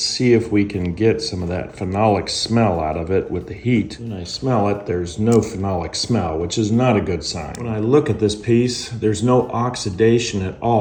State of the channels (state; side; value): identical; both; correlation 1.00